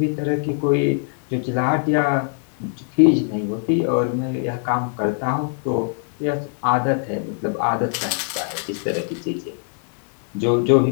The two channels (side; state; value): right; silent; 59 dB below the other